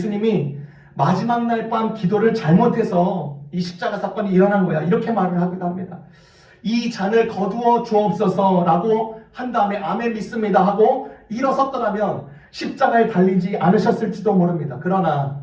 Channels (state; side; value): identical; both; correlation 1.00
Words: 마지막 날 밤 기도를 잘못해서 이 십자가 사건이 일어난 거야, 이렇게 말을 하기도 합니다. 이 잔을 거두어 주옵소서 라고 한 다음에 아멘 믿습니다 하고 일어섰더라면 십자가에 달리지 않으셨을지도 모릅니다. 그러나